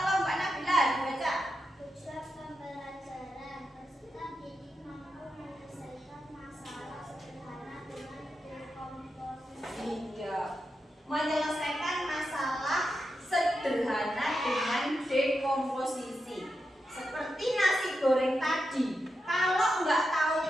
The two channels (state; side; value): normal; both; correlation 0.88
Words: Mbak Nabila dibaca. Tujuan pembelajaran peserta didik mampu menyelesaikan masalah sederhana dengan dekomposisi. Iya, menyelesaikan masalah sederhana dengan dekomposisi. Seperti nasi goreng tadi, kalau nggak tahu